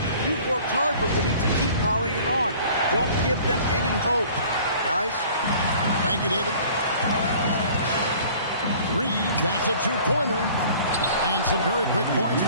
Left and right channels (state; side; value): inverted; both; correlation -0.49